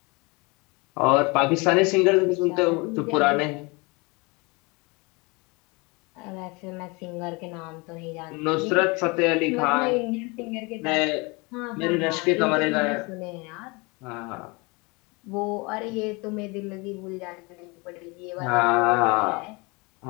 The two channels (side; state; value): right; quieter; 27.6 dB